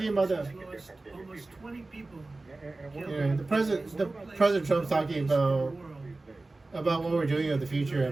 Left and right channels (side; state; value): left; quieter; 3.2 dB